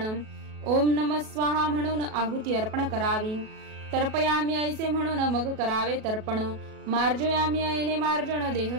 ओम नमः स्वाहा म्हणून आहुती अर्पण करावी, तर्पयामी ऐसे म्हणून मग करावे तर्पण, मार्जयामी ऐने मार्जन देह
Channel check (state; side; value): late; left; 37 ms